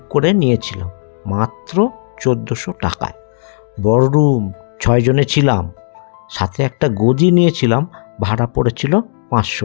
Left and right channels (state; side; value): silent; right; digital silence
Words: করে নিয়েছিলাম মাত্র 1400 টাকায়। বড় রুম, 6 জনে ছিলাম, সাথে একটা গদি নিয়েছিলাম, ভাড়া পড়েছিল 500